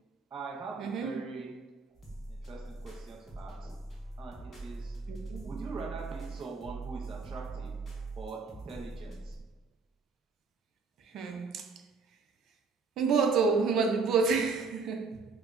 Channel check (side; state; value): left; quieter; 4.5 dB